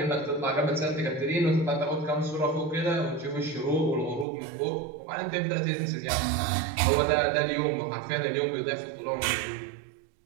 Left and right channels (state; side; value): drops out; left; at 4.2 s